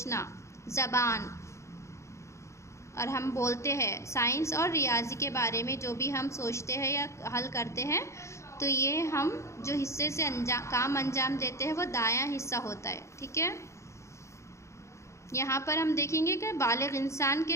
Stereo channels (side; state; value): right; late; 0.14 ms